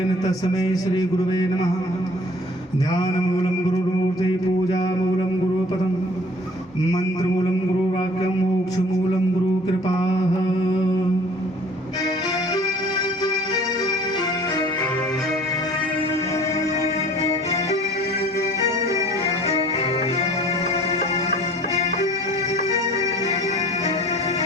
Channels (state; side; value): normal; both; correlation 0.50